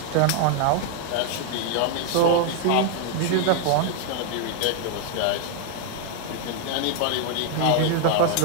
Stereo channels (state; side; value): different; both; correlation 0.00